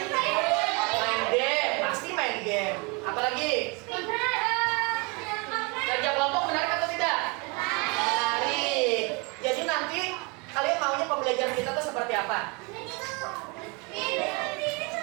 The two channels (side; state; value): left; quieter; 30.2 dB